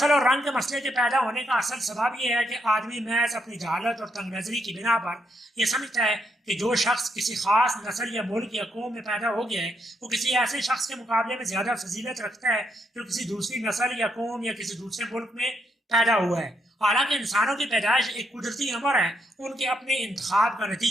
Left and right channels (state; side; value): normal; both; correlation 0.78